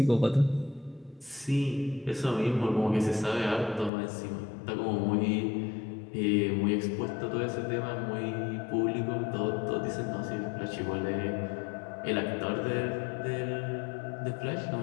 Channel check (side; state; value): right; drops out; at 3.9 s